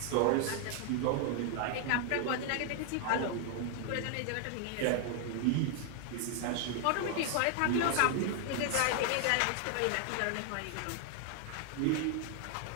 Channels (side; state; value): both; different; correlation 0.00